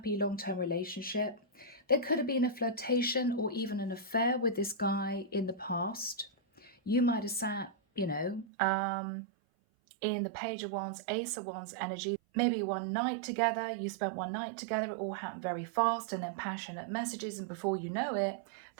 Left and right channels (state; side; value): drops out; left; at 8.5 s